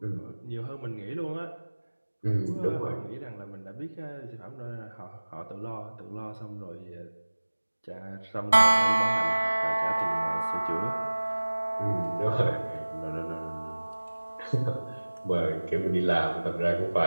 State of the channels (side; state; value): both; inverted; correlation -1.00